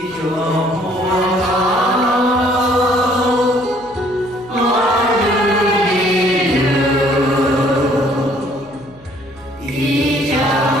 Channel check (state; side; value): noise; left; hum, 25 dB below the sound